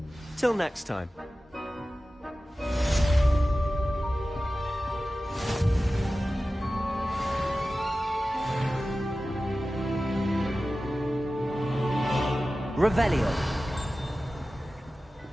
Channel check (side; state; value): both; normal; correlation 0.95